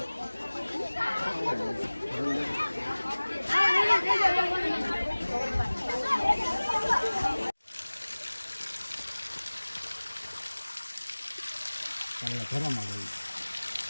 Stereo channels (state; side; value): inverted; both; correlation -1.00